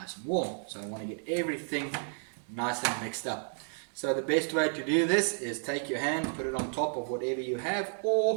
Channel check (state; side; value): silent; left; digital silence